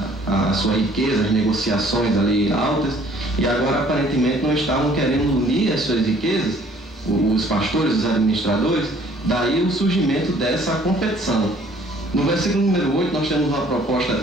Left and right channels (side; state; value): both; normal; correlation 0.57